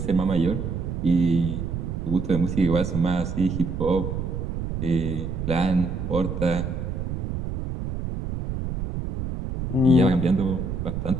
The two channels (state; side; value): noise; right; rumble, 4 dB below the sound